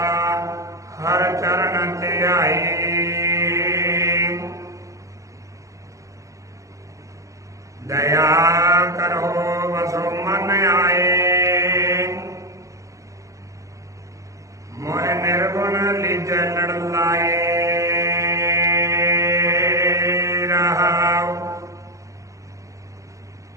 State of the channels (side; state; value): left; late; 0.15 ms